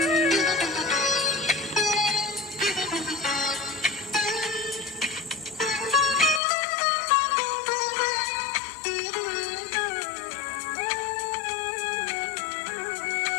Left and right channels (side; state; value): right; drops out; at 6.4 s